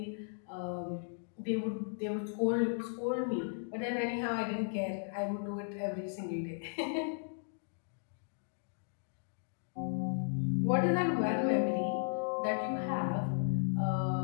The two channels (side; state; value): right; silent; digital silence